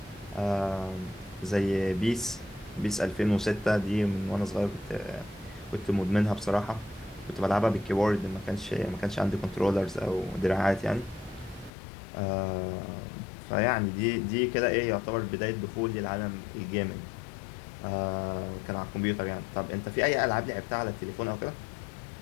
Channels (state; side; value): drops out; right; at 11.7 s